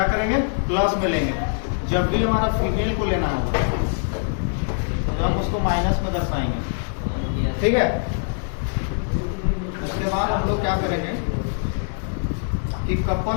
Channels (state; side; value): silent; right; digital silence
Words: करेंगे? प्लस में लेंगे। जब भी हमारा फीमेल को लेना होगा तो हम उसको माइनस में दर्शाएंगे। ठीक है, उसके बाद हम लोग क्या करेंगे कि कपल